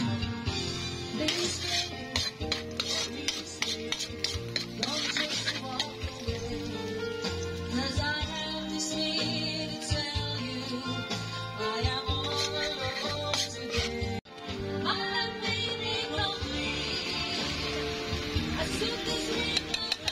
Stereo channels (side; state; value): both; identical; correlation 1.00